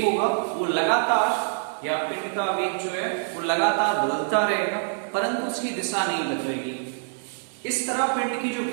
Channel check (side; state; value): left; silent; 61 dB below the other